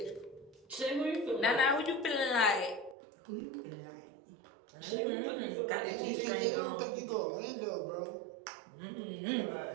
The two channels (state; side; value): drops out; left; at 3.0 s